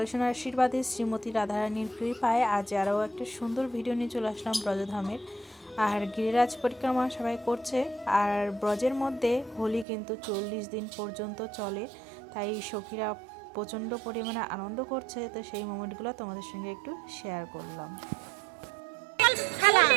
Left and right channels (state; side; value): drops out; left; at 9.9 s